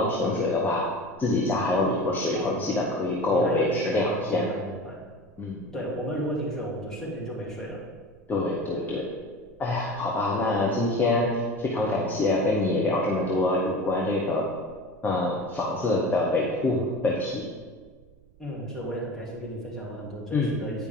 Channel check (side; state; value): right; noise; rumble, 27 dB below the sound